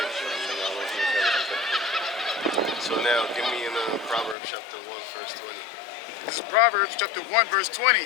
So now, give me in Proverbs chapter 1, verse 20. This is Proverbs chapter 1, verse 20.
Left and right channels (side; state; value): right; drops out; at 4.4 s